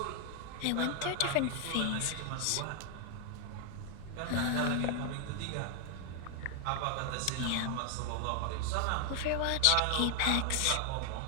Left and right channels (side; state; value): both; different; correlation 0.00